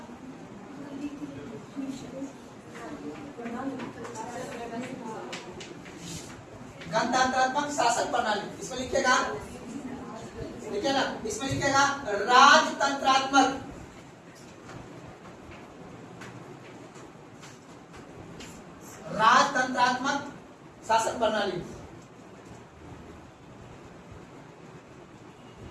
गणतंत्रात्मक शासन प्रणाली। इसमें लिखेगा, लिखे ना, इसमें लिखेगा राजतंत्रात्मक, राजतंत्रात्मक शासन प्रणाली।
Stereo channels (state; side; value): identical; both; correlation 1.00